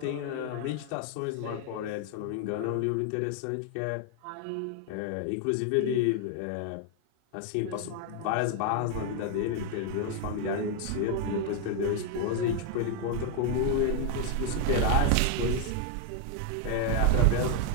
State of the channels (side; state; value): both; different; correlation 0.00